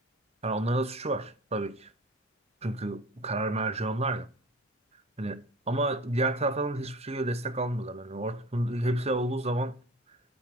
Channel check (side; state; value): both; normal; correlation 0.39